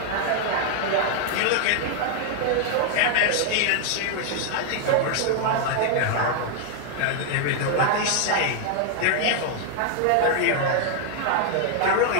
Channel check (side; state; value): both; different; correlation 0.00